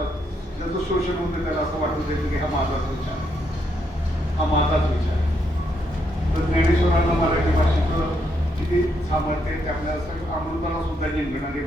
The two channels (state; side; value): normal; both; correlation 0.77